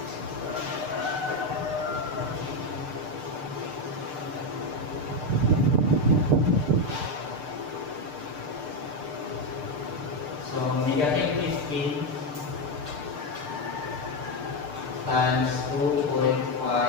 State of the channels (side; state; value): left; late; 6.7 ms